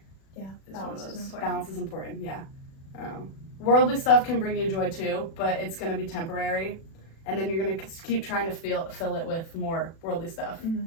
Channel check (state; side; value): late; right; 36 ms